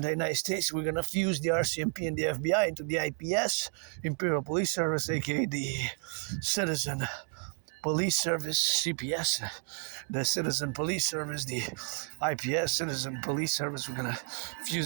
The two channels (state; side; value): quieter; left; 37.6 dB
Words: United States, we're going to fuse the RCMP and the FBI into the IPS, Imperial Police Service, aka the Citizen Police Service, CPS, the Citizen Police Service, the IPS, Citizen Police Service. We're going to